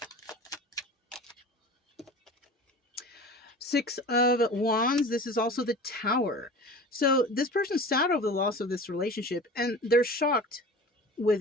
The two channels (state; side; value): normal; both; correlation 0.37